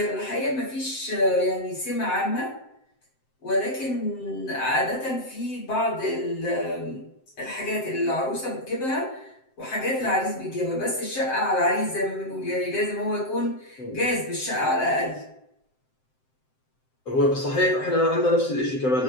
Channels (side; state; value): right; late; 7.7 ms